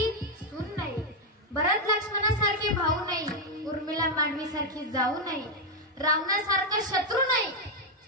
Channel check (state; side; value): normal; both; correlation 0.02